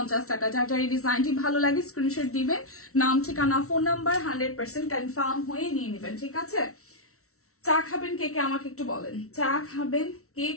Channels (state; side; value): late; right; 0.63 ms